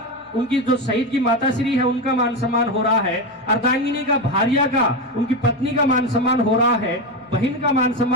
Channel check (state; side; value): normal; both; correlation 0.15